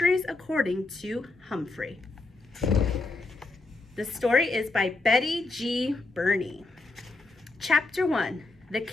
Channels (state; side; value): quieter; right; 3.3 dB